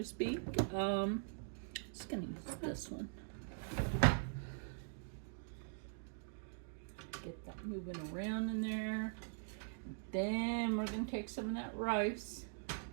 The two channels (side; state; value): left; silent; digital silence